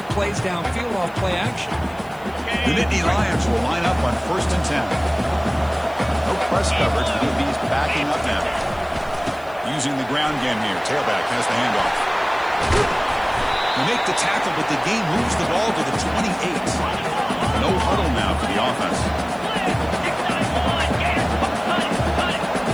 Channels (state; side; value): noise; left; hiss, 27 dB below the sound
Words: plays downfield off play action. The Nittany Lions will line up on 1st and 10. No press coverage. The DB's backing up now. Using the ground game here. Tailback has the handoff. They make the tackle, but the game moves the ball to the 28. No huddle now for the offense.